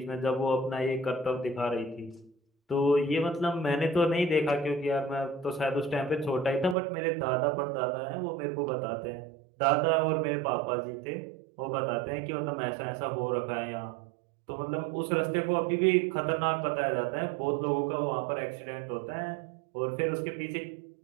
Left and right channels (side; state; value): left; drops out; at 6.8 s